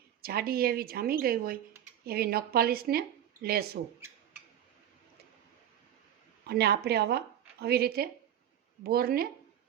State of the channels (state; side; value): quieter; left; 10.7 dB